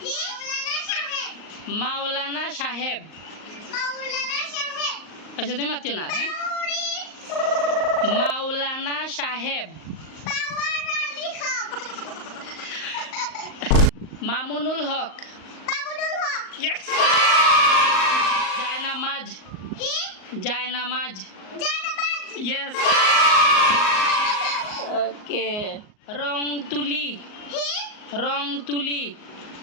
মাওলানা সাহেব মাওলানা সাহেব মাওলানা সাহেব আচ্ছা তুমি মাতিও না হ্যাঁ পাউরি মাওলানা সাহেব পাওয়ার আলী খান মামুনুল হক বাবুল হক ইয়েস জায়নামাজ কি জায়নামাজ জানাবাজ ইয়েস ওকে রং তুলি কি রং তুলি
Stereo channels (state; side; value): late; right; 38 ms